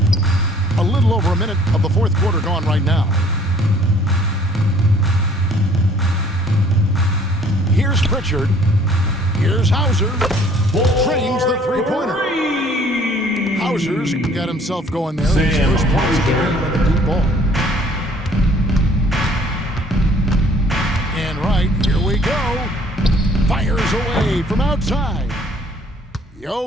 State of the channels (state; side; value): normal; both; correlation 0.57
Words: A little over a minute of the fourth quarter gone right now. Here's Pritchard. Here's Hauser. Trains the three-pointer. Hauser's got himself going there. His Sam first points of the Hauser. game with a deep ball. And right, here we go. Fires away from outside.